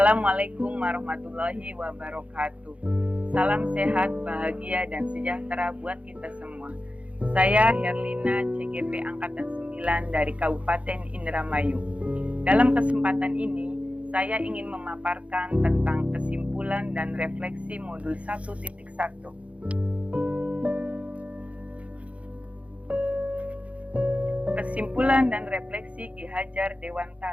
warahmatullahi wabarakatuh. Salam sehat, bahagia, dan sejahtera buat kita semua. Saya Herlina, CGP Angkatan 9 dari Kabupaten Indramayu. Dalam kesempatan ini, saya ingin memaparkan tentang kesimpulan dan refleksi modul 1.1. Kesimpulan dan refleksi Ki Hajar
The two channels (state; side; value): late; left; 0.064 ms